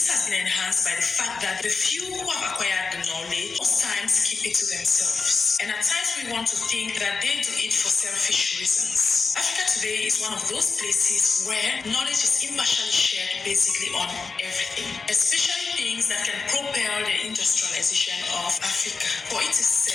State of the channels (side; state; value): right; quieter; 4.6 dB